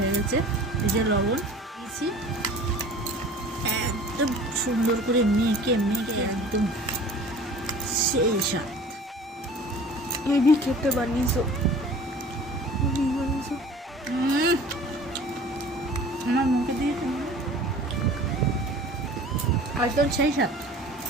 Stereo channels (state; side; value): normal; both; correlation 0.44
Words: গেছে, এই যে লবণ দিয়েছি, একদম সুন্দর করে মেখে মেখে একদম সেই স্বাদ। হেভি খেতে বানিয়েছো। আমার মুখে দিয়ে একদম সেই স্বাদ।